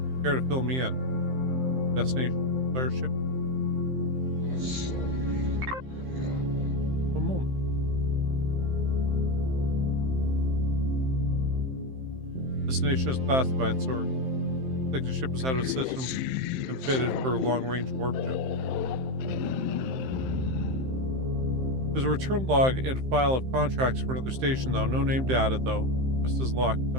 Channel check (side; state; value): left; late; 15 ms